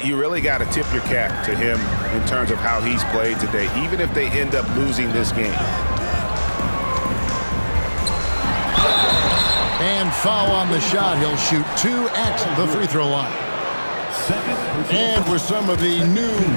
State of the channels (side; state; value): both; inverted; correlation -1.00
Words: You really got to tip your cap to him in terms of how he's played today, even if they end up losing this game. And foul on the shot. He'll shoot 2 at the free throw line. And with some of the new